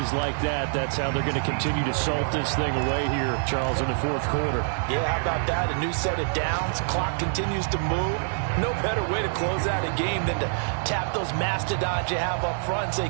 like that, that's how they're going to continue to salt this thing away here, Charles, in the 4th quarter. Yeah, how about that? A new set of downs. Clock continues to move. No better way to close out a game than to tap those mastodons you have up front and say,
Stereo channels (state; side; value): silent; left; 61 dB below the other